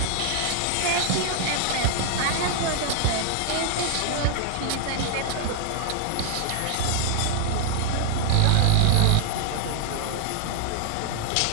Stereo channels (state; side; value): different; both; correlation 0.00